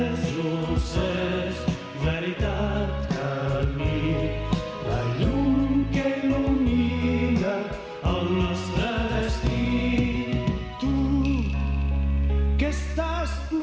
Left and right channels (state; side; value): identical; both; correlation 1.00